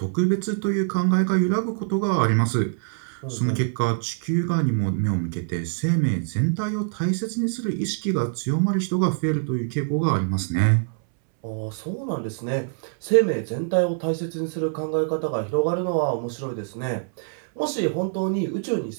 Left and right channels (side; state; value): left; silent; 62 dB below the other